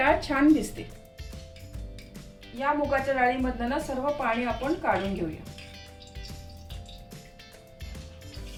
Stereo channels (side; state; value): both; identical; correlation 1.00